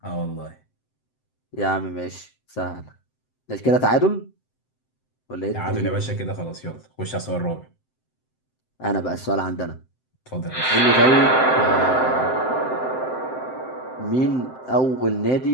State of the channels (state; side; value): late; right; 7.7 ms